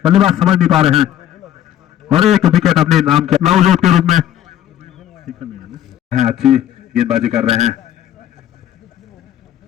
बल्लेबाज समझ नहीं पा रहे हैं और एक विकेट अपने नाम के नवजोत के रूप में अच्छी गेंदबाजी कर रहे हैं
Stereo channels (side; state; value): right; quieter; 11.3 dB